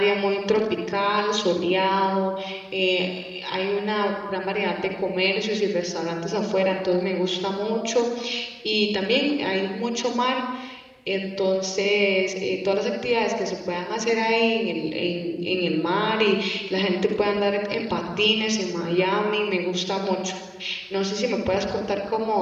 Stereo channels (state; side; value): identical; both; correlation 1.00